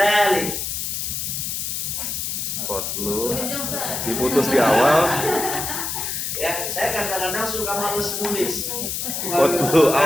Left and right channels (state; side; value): noise; left; hiss, 3 dB below the sound